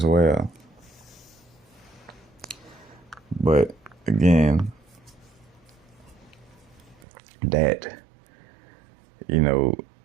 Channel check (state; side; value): drops out; left; at 7.0 s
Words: well. But again, that,